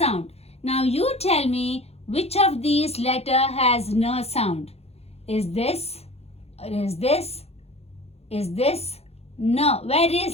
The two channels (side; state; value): right; late; 0.30 ms